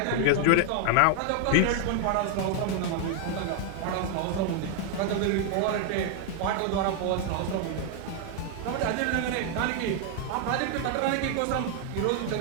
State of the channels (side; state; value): both; different; correlation 0.00